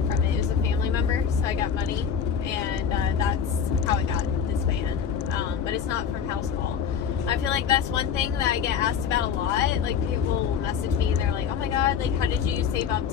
from it. It was a family member, so I got money, and that's how I got this van. But it's not from house call. I feel like that's one thing that I get asked about a lot. People will message me and they're like, oh my god, how did you save up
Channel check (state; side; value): quieter; right; 7.4 dB